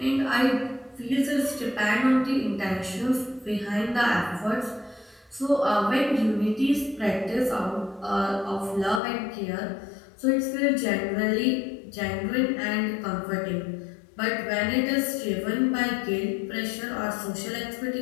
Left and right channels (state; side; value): drops out; right; at 9.0 s